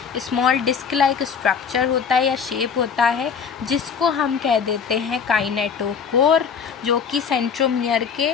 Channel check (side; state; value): right; quieter; 6.6 dB